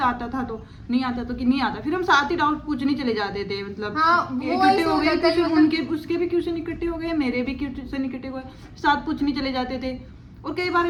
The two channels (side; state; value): both; identical; correlation 1.00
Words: आता था, तो नहीं आता तो कि नहीं आता, फिर हम साथ ही डाउट पूछने चले जाते थे। मतलब हाँ, इकट्ठे हो गए क्वेश्चन, मतलब उनके उसके भी क्वेश्चन इकट्ठे हो गए, मेरे भी क्वेश्चन इकट्ठे हो गए, साथ पूछने चले जाते थे। और कई